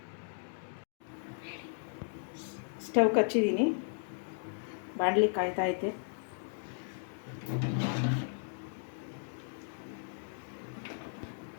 ಸ್ಟವ್ ಹಚ್ಚಿದ್ದೀನಿ, ಬಾಣಲಿ ಕಾಯ್ತೈತೆ.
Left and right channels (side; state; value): right; silent; digital silence